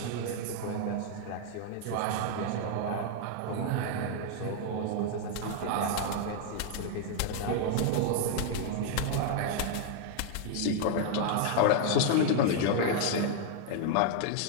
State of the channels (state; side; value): different; both; correlation 0.00